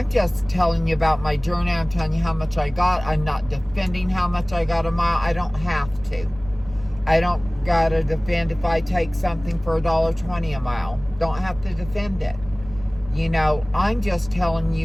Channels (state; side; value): noise; right; rumble, 17 dB below the sound